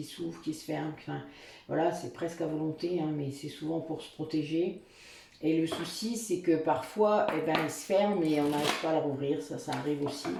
s'ouvre, qui se ferme. Enfin, voilà, c'est presque à volonté, hein, mais c'est souvent pour se protéger. Et le souci, c'est que parfois, eh ben, il se ferme et on n'arrive pas à le rouvrir. Ça arrive aussi,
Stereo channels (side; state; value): both; identical; correlation 1.00